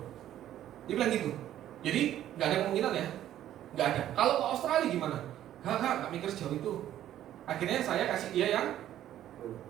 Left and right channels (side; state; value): left; quieter; 12.1 dB